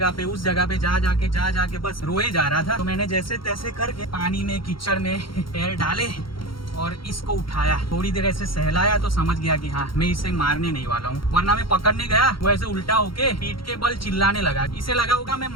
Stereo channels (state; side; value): late; right; 0.73 ms